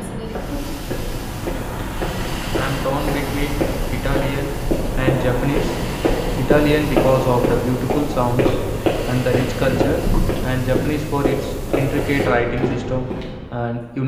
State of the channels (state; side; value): identical; both; correlation 1.00